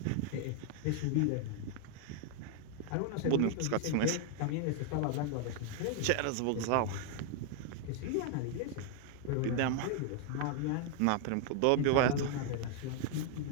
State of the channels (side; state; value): both; different; correlation 0.00